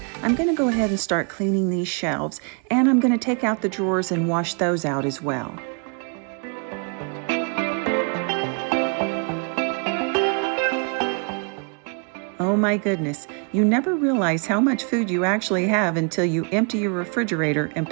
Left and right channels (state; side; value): quieter; left; 38.5 dB